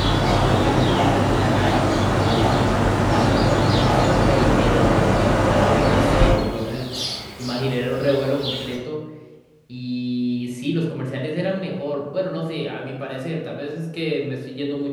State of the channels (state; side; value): identical; both; correlation 1.00